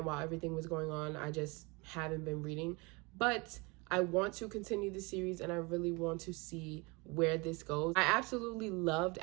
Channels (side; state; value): left; quieter; 27.3 dB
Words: while everything was going on, I just haven't been reading. But I want to continue the series, and I really want to see where this goes. I absolutely loved